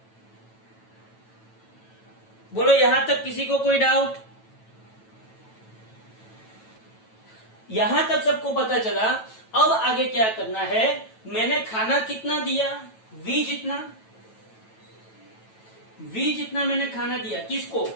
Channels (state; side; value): late; right; 9.1 ms